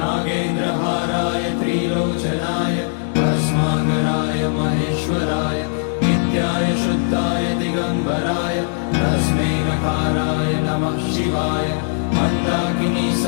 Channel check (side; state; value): right; silent; 66 dB below the other